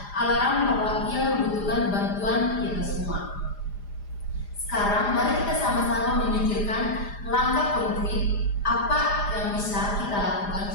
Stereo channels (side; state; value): right; late; 4.9 ms